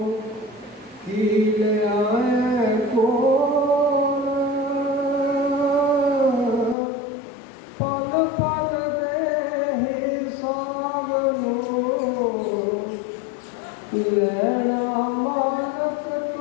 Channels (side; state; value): right; drops out; at 6.8 s